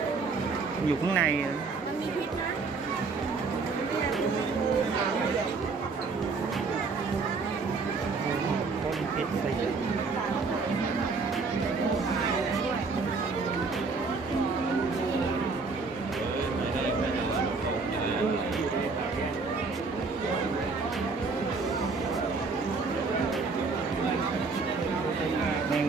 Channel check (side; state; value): left; quieter; 4.3 dB